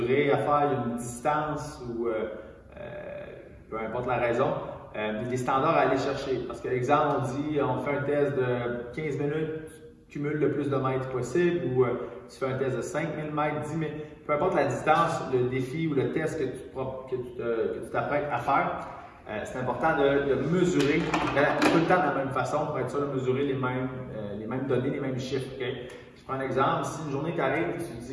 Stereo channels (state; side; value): identical; both; correlation 1.00